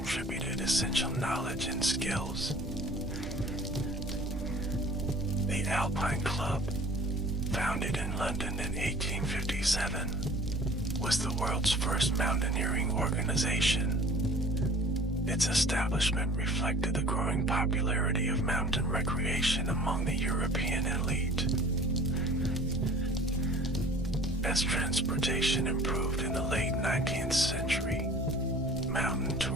essential knowledge and skills. The Alpine Club, founded in London in 1857, was the world's first mountaineering organization. Its establishment reflected the growing popularity of mountain recreation among the European elite. As transportation improved in the late 19th century, mountain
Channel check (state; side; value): normal; both; correlation 0.47